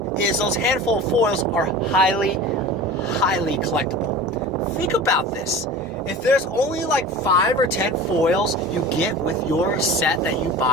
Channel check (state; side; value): normal; both; correlation 0.36